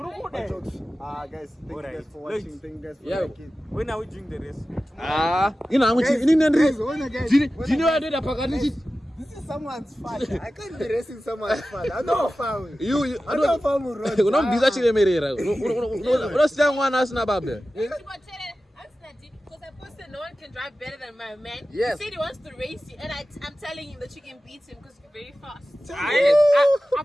Guys, thank you guys for watching. Thank you guys for liking. When are we doing the race? Ina nangu ini nendri. Guys, Jini wadoda pakati. this is someone's father. I can't be racing someone's father. I know family. I know family. Unombiza chilemerera. Unosiya mwana asina baba. No one can drive better than my man. Yes. He said he wants to race you, and I'm telling him that you can beat him because you're very fast.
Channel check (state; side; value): normal; both; correlation 0.95